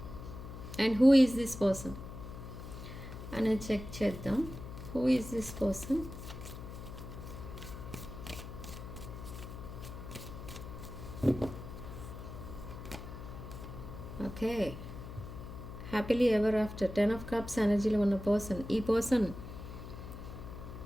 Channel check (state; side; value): noise; left; hum, 10 dB below the sound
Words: and who is this person అనేది చెక్ చేద్దాం. Who is this person? Okay, happily ever after 10 of Cups ఎనర్జీలో ఉన్న పర్సన్. ఈ పర్సన్